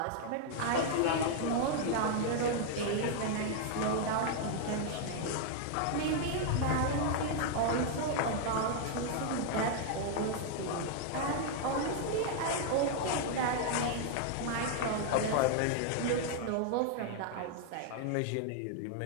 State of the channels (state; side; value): different; both; correlation 0.00